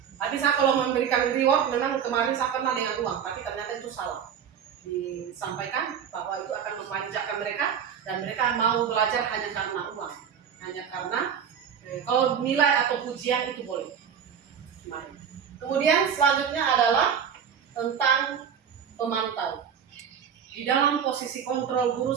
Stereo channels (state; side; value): quieter; left; 7.9 dB